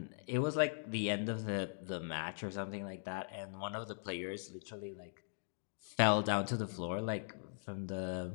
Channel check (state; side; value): silent; right; digital silence